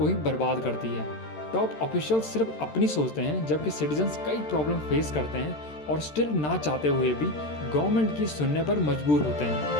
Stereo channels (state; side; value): late; right; 13 ms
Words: ही बर्बाद करती है। टॉप ऑफिशियल्स सिर्फ अपनी सोचते हैं, जबकि सिटीजन्स कई प्रॉब्लम फेस करते हैं और स्टिल ना चाहते हुए भी गवर्नमेंट की सुनने पर मजबूर होते